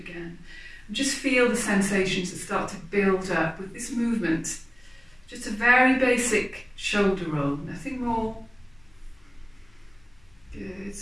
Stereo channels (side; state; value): left; noise; hum, 30 dB below the sound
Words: And just feel the sensations that start to build up with this movement. Just a very basic shoulder roll, nothing more. Good.